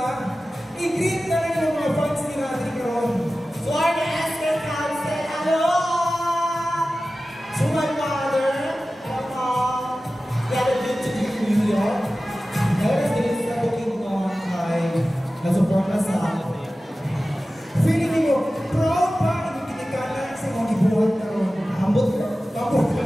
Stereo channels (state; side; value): normal; both; correlation 0.95